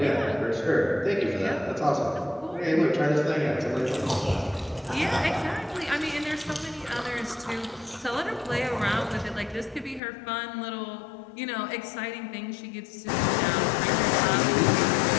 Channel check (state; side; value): drops out; right; at 10.0 s